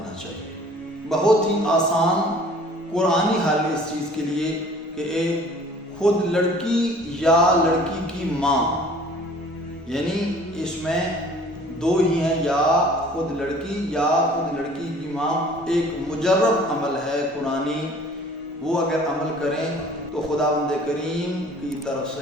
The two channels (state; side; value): normal; both; correlation 0.51